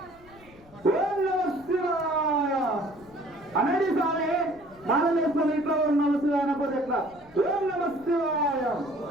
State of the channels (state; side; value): noise; left; rumble, 25 dB below the sound